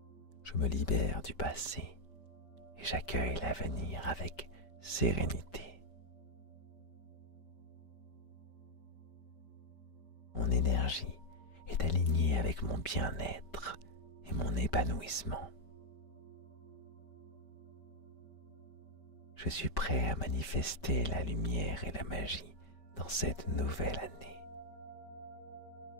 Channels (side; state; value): right; late; 5.1 ms